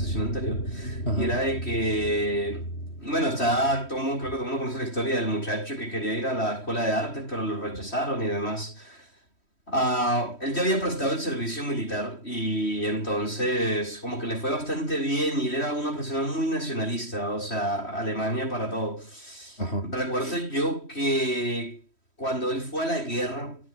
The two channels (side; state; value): right; late; 3.1 ms